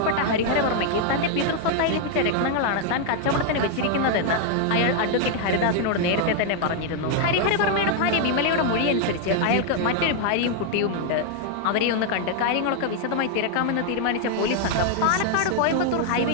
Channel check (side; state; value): both; different; correlation 0.00